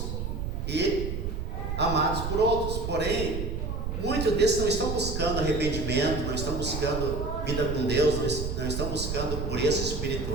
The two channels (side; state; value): right; noise; rumble, 3 dB below the sound